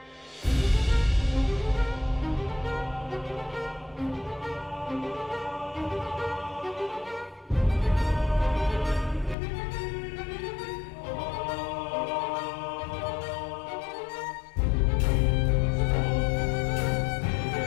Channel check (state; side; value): drops out; right; at 9.3 s